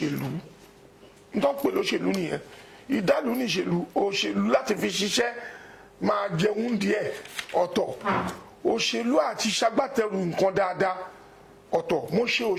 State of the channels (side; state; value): both; identical; correlation 1.00